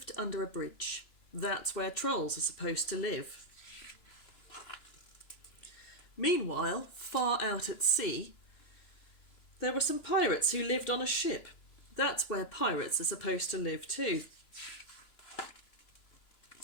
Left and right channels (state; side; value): late; right; 2.9 ms